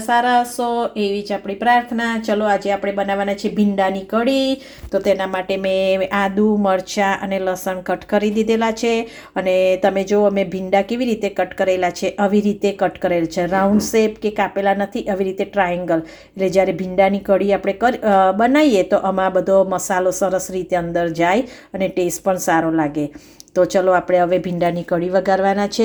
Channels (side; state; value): both; identical; correlation 1.00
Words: સારા હશો એવી જ આપણી પ્રાર્થના. ચલો આજે આપણે બનાવવાના છે ભીંડાની કઢી. તો તેના માટે મેં આદુ, મરચાં અને લસણ કટ કરી દીધેલા છે. અને તમે જો અમે ભીંડા કેવી રીતે કટ કરેલા છે, આવી રીતે કટ કરેલ છે. રાઉન્ડ શેપ કે કાપેલા નથી, આવી રીતે ટ્રાયેંગલ. એટલે જ્યારે ભીંડાની કઢી આપણે બનાવીએ તો આમાં બધો મસાલો સરસ રીતે અંદર જાય અને ટેસ્ટ પણ સારો લાગે. તો ચલો આપણે હવે ભીંડાની કઢી વઘારવાના